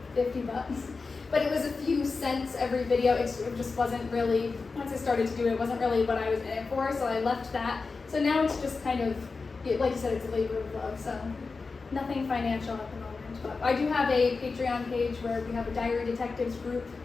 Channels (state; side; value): quieter; right; 4.3 dB